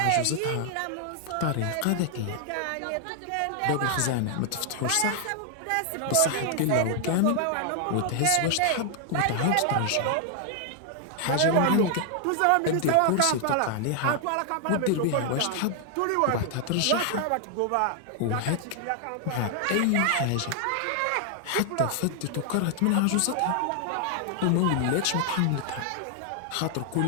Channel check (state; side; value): different; both; correlation 0.00